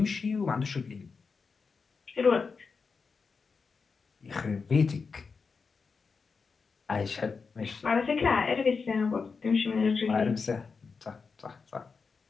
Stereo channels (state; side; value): quieter; right; 5.0 dB